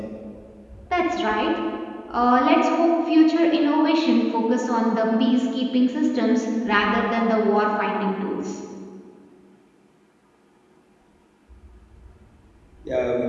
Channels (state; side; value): identical; both; correlation 1.00